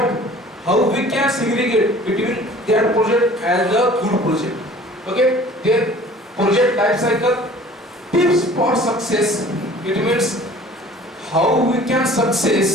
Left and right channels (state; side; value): normal; both; correlation 0.48